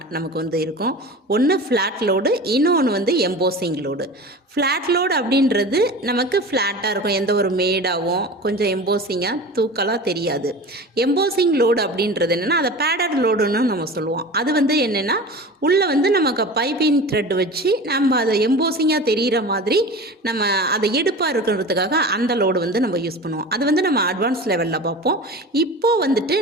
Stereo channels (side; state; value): both; normal; correlation 0.34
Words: நமக்கு இருக்கும். ஒன்று ஃப்ளாட் லோடு, இன்னொன்று எம்போசிங் லோடு. ஃப்ளாட் லோடு அப்படின்றது நமக்கு ஃப்ளாட்டாக இருக்கும், எந்த ஒரு மேடாகவும் கொஞ்சம் எம்போசிங்காக தூக்கலாக தெரியாது. எம்போசிங் லோடு அப்படின்றது என்னென்னா அதை பேடட் லோடுன்னு நம்ம சொல்லுவோம். அது என்னென்னா உள்ளே நமக்கு பைப்பிங் த்ரெட் வச்சு நம்ம அதை எம்போசிங்காக தெரிகிற மாதிரி நம்ம அதை எடுப்பாக இருக்கிறதுக்காக அந்த லோடு நம்ம யூஸ் பண்ணுவோம். அது நம்ம அட்வான்ஸ் லெவலில் பார்ப்போம்.